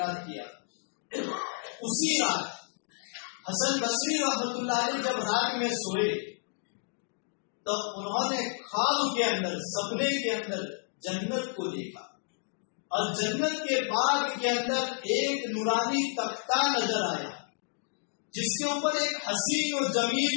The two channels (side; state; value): right; silent; 57 dB below the other